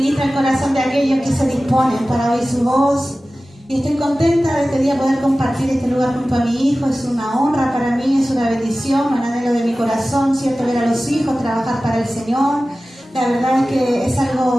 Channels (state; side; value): normal; both; correlation 0.96